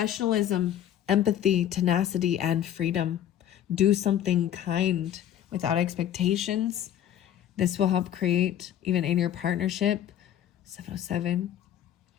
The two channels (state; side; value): quieter; right; 10.7 dB